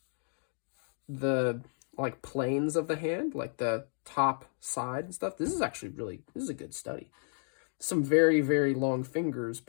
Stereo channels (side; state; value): right; silent; 56 dB below the other